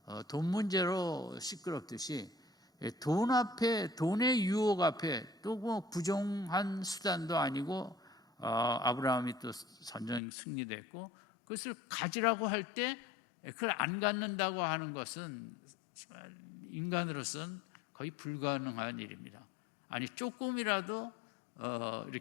돈 문제로 시끄럽듯이 돈 앞에, 돈의 유혹 앞에 또 뭐 부정한 수단도 아니고 아브라함이 또 전쟁 승리됐고 그것을 가지라고 할 때 그걸 안 갖는다고 하는 것은 인간으로서는 거의 불가능한 일입니다. 아니 조금이라도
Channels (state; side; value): drops out; right; at 10.2 s